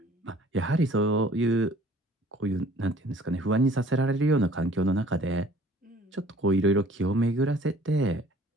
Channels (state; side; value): normal; both; correlation 0.54